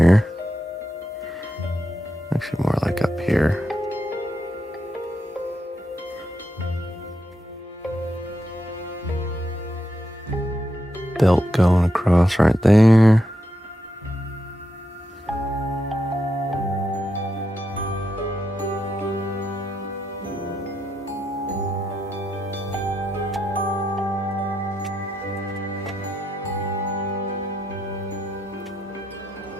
Actually more like up here. Belt going across right there.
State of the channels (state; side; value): normal; both; correlation 0.83